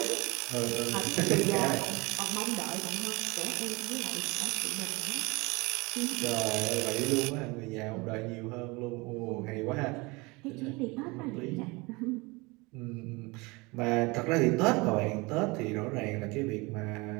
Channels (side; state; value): left; quieter; 25.3 dB